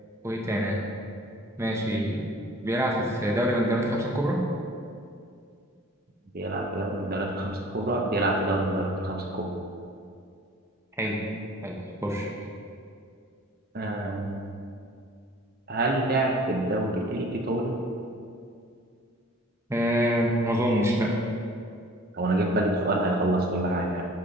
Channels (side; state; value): both; normal; correlation 0.49